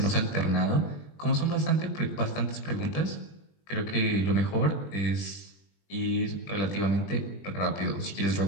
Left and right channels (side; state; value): right; late; 20 ms